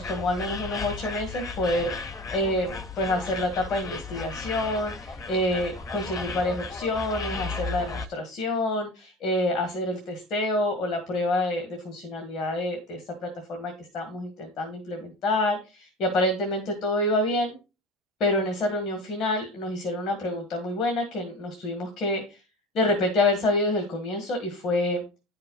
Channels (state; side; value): normal; both; correlation 0.33